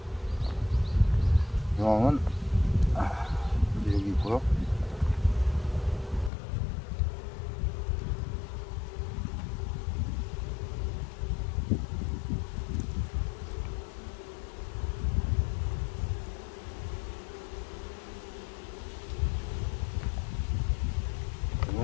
여왕은 여기 있고요.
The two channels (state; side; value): drops out; right; at 6.3 s